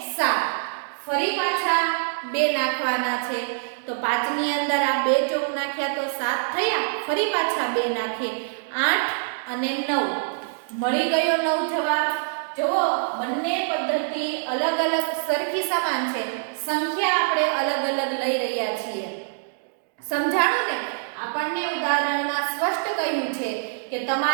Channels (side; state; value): left; silent; digital silence